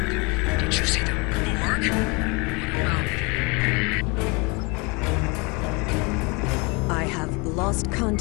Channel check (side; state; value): right; quieter; 28.8 dB